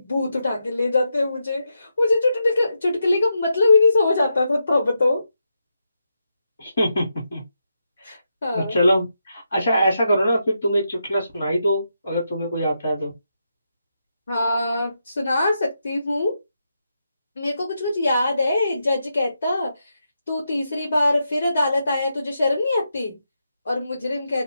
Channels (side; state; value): both; inverted; correlation -0.84